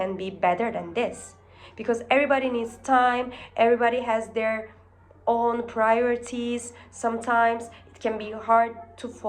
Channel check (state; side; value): identical; both; correlation 1.00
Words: be better than this, because everybody needs time, everybody has their own priorities. Sometimes it can be hard to